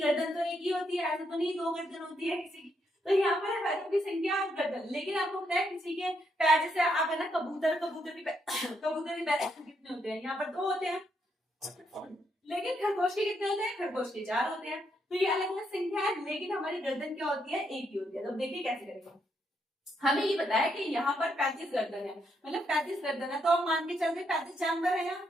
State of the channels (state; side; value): normal; both; correlation 0.77